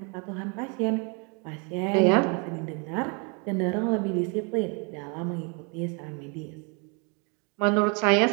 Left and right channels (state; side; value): quieter; left; 34.5 dB